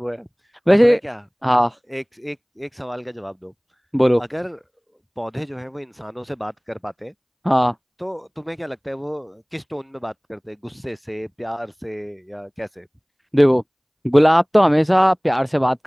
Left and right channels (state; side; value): identical; both; correlation 1.00